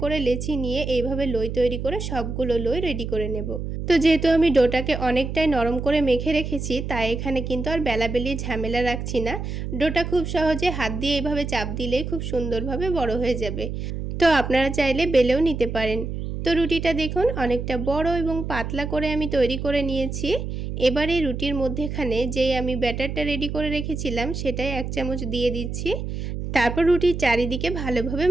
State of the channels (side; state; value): right; noise; hum, 5 dB below the sound